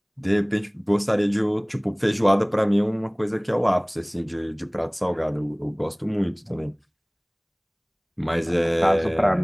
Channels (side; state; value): both; identical; correlation 1.00